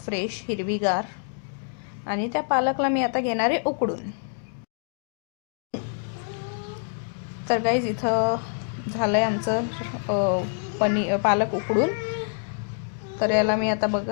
फ्रेश हिरवीगार, आणि त्या पालकला मी आता घेणार आहे उकडून. तर गाईज इथं झालं आहे आमचं पालक उकडून. तर याला मी आता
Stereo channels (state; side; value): silent; right; digital silence